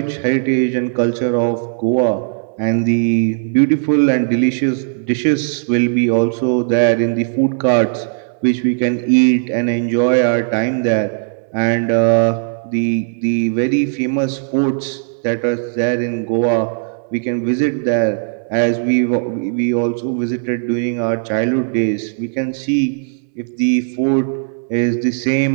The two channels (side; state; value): left; silent; digital silence